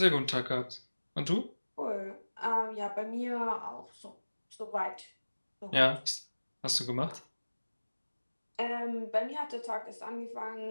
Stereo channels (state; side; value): inverted; both; correlation -1.00